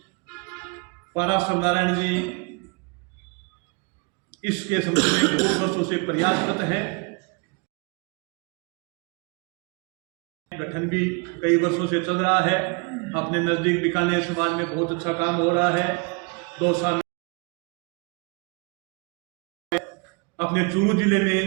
पाराशर नारायण जी इसके संबंध में बहुत वर्षों से प्रयासरत हैं। गठन भी कई वर्षों से चल रहा है। अपने नजदीक बीकानेर समाज में बहुत अच्छा काम हो रहा है। 2 साल अपने चूरू जिले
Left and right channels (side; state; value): left; quieter; 32.4 dB